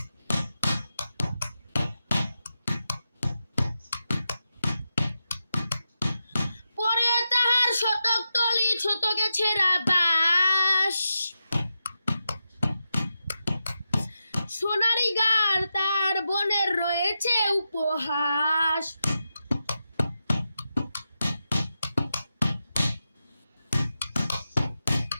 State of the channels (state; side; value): inverted; both; correlation -0.89